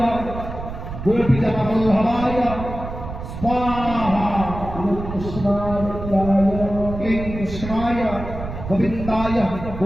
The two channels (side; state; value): right; noise; rumble, 9 dB below the sound